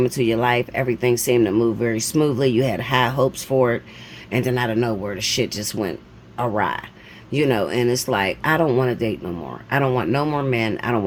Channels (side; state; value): both; identical; correlation 1.00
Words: into your life, everything seemed to move very smoothly. You had high hopes for it. And then out of nowhere, the shit just went awry. You know, and it's like, I don't want to date no more. I don't want no more men. I don't